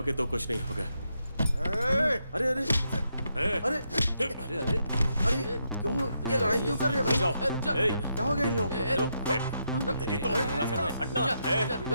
तो कुछ नहीं होगा। ए, अरे अरे ए, अरे अरे अरे अरे, क्यों ये लड़ाई क्यों कर रहे हैं भाई? जाओ। ए, क्या हो गया इन लोगों को? तेरी तो क्या कर रहे हैं? हटना। ए,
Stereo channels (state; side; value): inverted; both; correlation -0.80